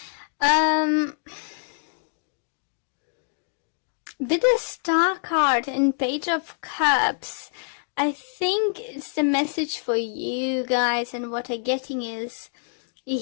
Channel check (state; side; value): silent; right; digital silence